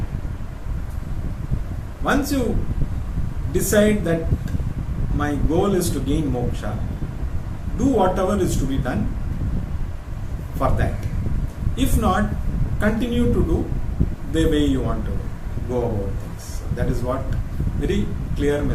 Once you decide that my goal is to gain moksha, do whatever is to be done for that. If not, continue to do the way you want to go about things. So that is what very clear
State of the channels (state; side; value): identical; both; correlation 1.00